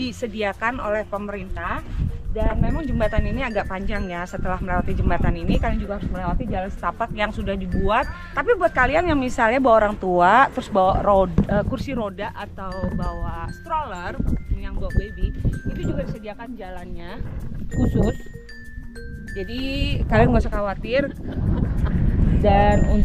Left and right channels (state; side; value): identical; both; correlation 1.00